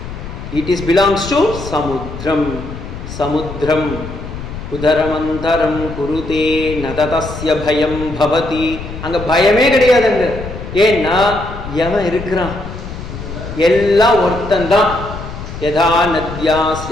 It is belongs to சமுத்திரம். சமுத்திரம் உதரமந்தரம் குருதே நததஸ்ய பயம் பவதி. அங்க பயமே கிடையாது. அங்க ஏன்னா எவன் இருக்கிறான்? எல்லாம் ஒருத்தந்தான். யதா நத்யா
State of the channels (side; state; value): left; noise; rumble, 10 dB below the sound